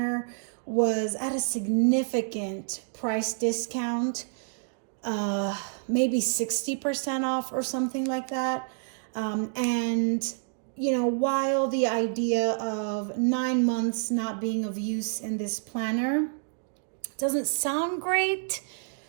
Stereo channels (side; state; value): left; silent; digital silence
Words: was at a significant price discount, maybe 60% off or something like that. And while the idea of 9 months not being of use in this planner doesn't sound great,